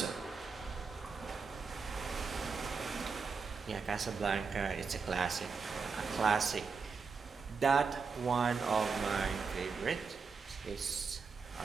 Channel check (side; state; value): left; quieter; 5.2 dB